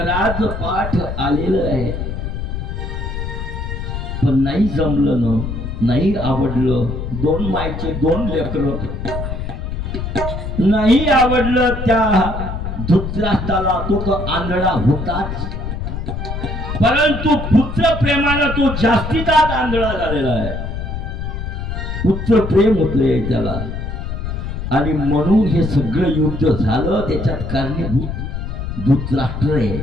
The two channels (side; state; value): left; noise; rumble, 5 dB below the sound